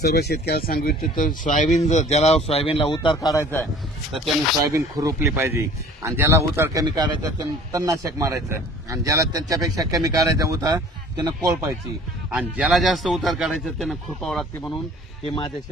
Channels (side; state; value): both; normal; correlation 0.49